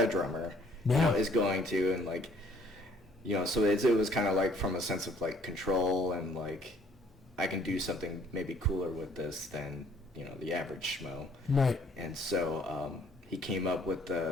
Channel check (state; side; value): normal; both; correlation 0.61